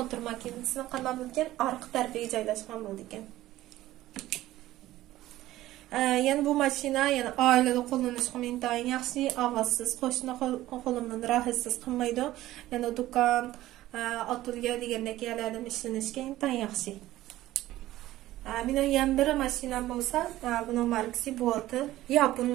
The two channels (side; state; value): left; quieter; 15.4 dB